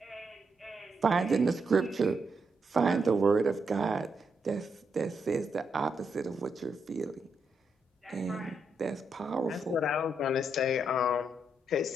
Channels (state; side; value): normal; both; correlation 0.80